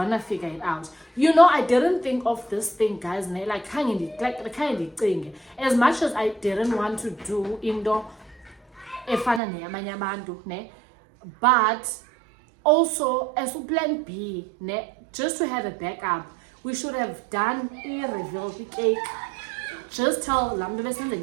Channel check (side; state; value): left; drops out; at 9.4 s